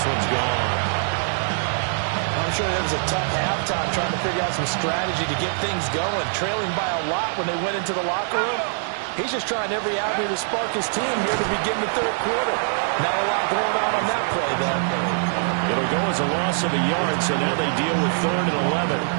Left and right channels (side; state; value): left; silent; digital silence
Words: one's gone. I'm sure it was a tough halftime trying to figure out some strategy to get things going. Trailing by a lot when they went into the locker room. He's just trying every avenue to spark his team here to begin the third quarter. Not a lot going on that play, though. It'll go as a loss of a yard, so now they deal with 3rd and 11.